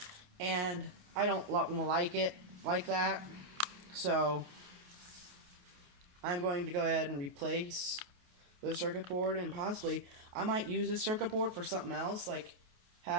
And I don't like it like that. So I'm going to go ahead and replace the circuit board, and possibly I might use this circuit board for something else, like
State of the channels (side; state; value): left; late; 28 ms